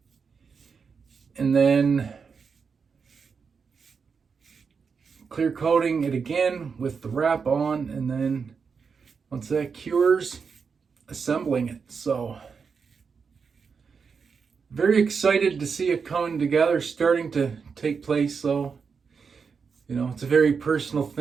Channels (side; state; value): left; quieter; 5.7 dB